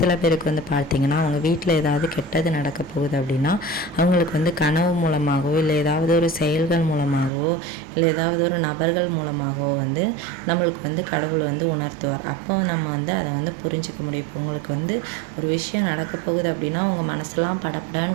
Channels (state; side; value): drops out; left; at 7.3 s